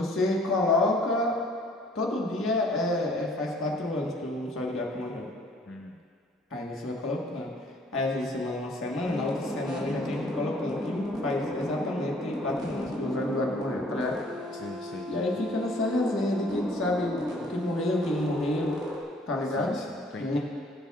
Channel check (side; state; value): both; normal; correlation 0.58